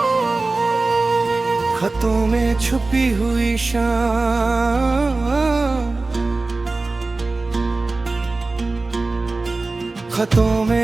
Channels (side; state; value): left; quieter; 3.4 dB